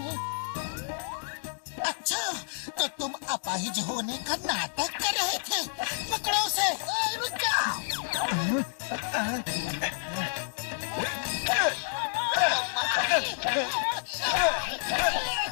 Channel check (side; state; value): right; silent; digital silence